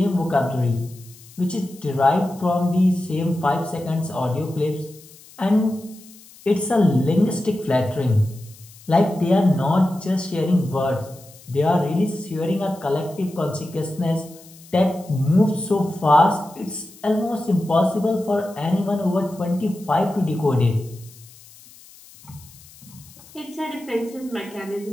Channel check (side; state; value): left; noise; hiss, 22 dB below the sound